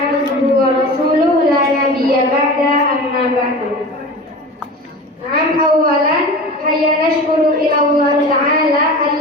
wa rasuluh la nabiyya ba'da amma ba'du. Awalan hayya nashkuru ila Allah ta'ala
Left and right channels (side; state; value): both; normal; correlation 0.34